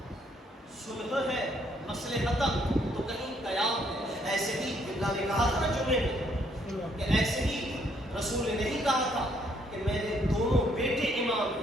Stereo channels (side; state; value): both; normal; correlation 0.69